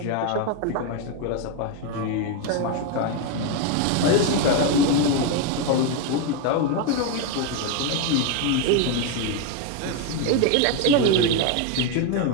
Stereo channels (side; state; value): both; different; correlation 0.02